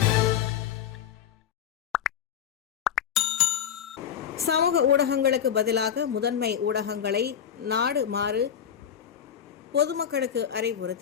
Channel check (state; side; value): quieter; right; 8.9 dB